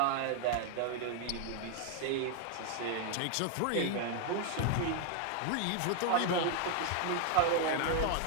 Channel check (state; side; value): different; both; correlation 0.00